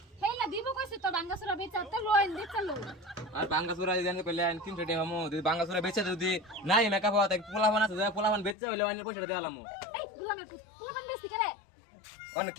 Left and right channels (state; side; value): drops out; right; at 8.6 s